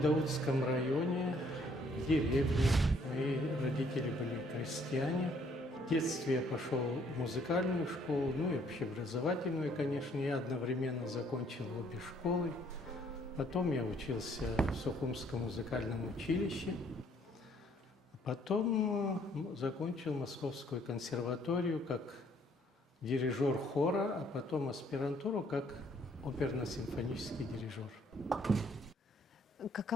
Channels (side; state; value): both; normal; correlation 0.64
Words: районе, в деревне. Мои родители были крестьяне. В детстве я пошел в музыкальную школу, ну и общеобразовательную, конечно. Я одновременно закончил обе школы. Потом я учился в Сухумском музыкальном училище. Потом закончил Московскую консерваторию как дирижер хора, а потом аспирантуру как оперно-симфонический дирижер.